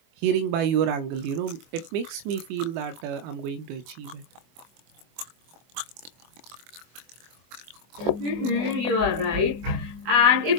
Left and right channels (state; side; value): late; left; 24 ms